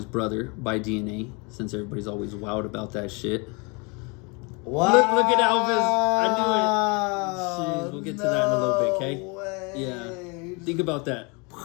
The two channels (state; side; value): quieter; right; 30.8 dB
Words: brother by DNA, since everybody's always wowed about that shit. Wow. Look at Elvis. I knew it. Jeez, we'll get to that in a little bit, okay? Way. Yeah. Think about that.